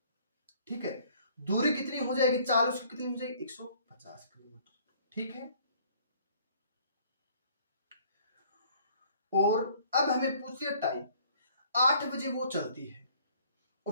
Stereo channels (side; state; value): both; inverted; correlation -0.58